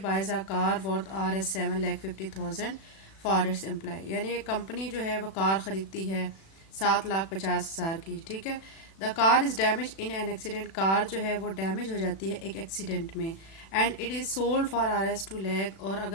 buys a car worth Rs 7,50,000 for its employ. यानी एक कंपनी जो है वो कार खरीदती है 7,50,000 की। ठीक है। The car is damage in an accident. Car जो है वो डैमेज हो जाती है एक एक्सीडेंट में। And it is sold for Rs 2 lakh. और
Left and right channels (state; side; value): late; right; 36 ms